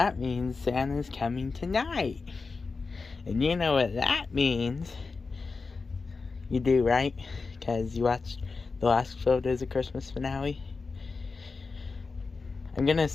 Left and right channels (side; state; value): right; quieter; 4.3 dB